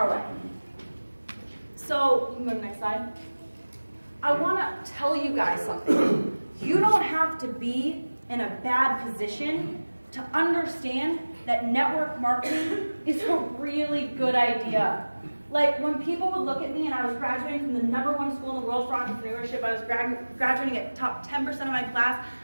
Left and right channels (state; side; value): inverted; both; correlation -1.00